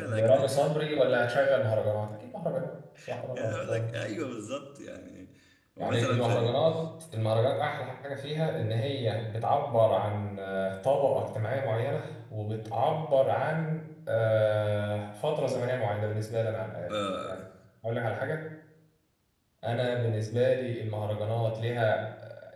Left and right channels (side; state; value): both; identical; correlation 1.00